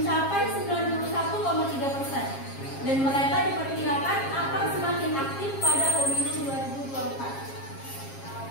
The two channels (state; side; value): late; right; 7.4 ms